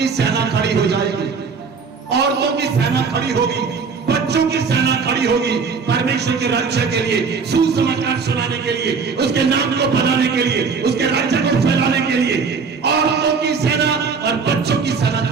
सेना खड़ी हो जाएगी, औरतों की सेना खड़ी होगी, बच्चों की सेना खड़ी होगी, परमेश्वर के रक्षा के लिए, सुसमाचार सुनाने के लिए, उसके नाम को बनाने के लिए, उसके राज्य को फैलाने के लिए औरतों की सेना और बच्चों की सेना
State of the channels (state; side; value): quieter; left; 5.3 dB